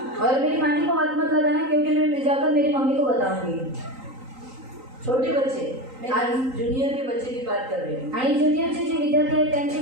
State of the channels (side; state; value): left; late; 3.9 ms